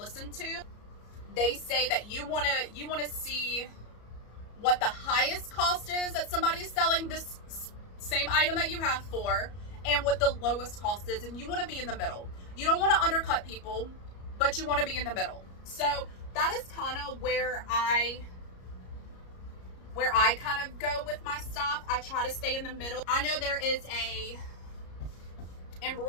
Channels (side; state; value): right; late; 34 ms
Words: to, they say that you want to see what the highest cost is that somebody is selling this same item that you have for, and what the lowest cost is, and you want to be in the middle. You don't want to undercut people, but you want to be in the middle. So that is kind of where I kind of go with my stuff. I try to stay in the middle. I know there is a